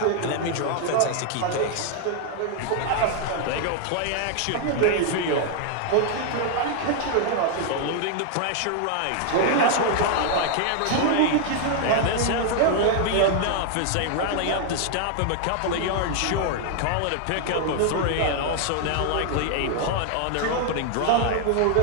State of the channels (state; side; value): different; both; correlation 0.00